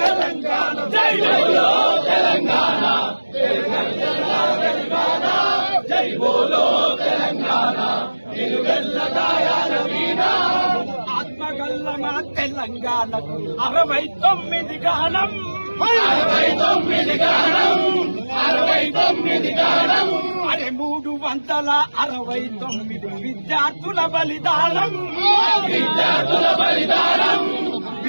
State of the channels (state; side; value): inverted; both; correlation -1.00